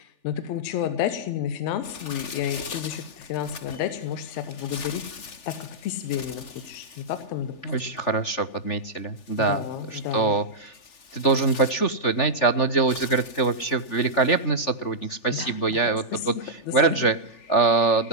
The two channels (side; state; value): right; late; 3.4 ms